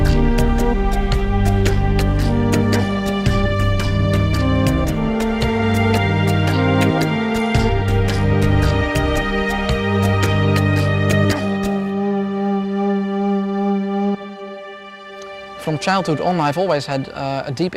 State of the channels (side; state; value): both; identical; correlation 1.00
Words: From childhood on, I've always had a deep